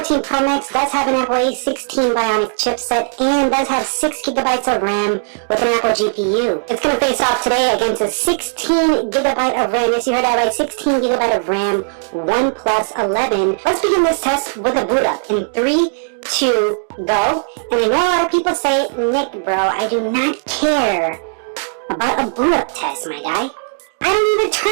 Pro Max does have an Apple A16 Bionic chipset and does have 6 gigabytes of RAM with an Apple GPU. It's going to face off today against a 16 gigabyte of RAM. Yes, you heard that right, 16 gigabyte of RAM OnePlus 11. Let's begin this test with a boot up in 3, 2, go. And I know a lot of people say, Nick, bro, I do not care about a boot up test, my guy. I don't even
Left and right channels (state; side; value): silent; left; digital silence